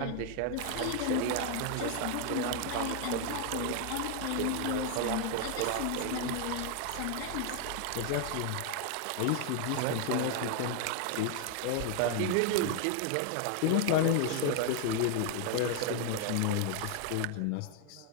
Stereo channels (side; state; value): both; different; correlation 0.01